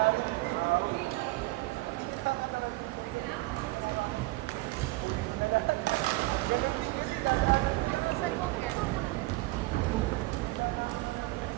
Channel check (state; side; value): quieter; left; 21.1 dB